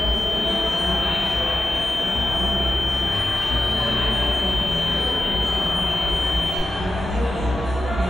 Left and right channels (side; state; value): both; normal; correlation 0.91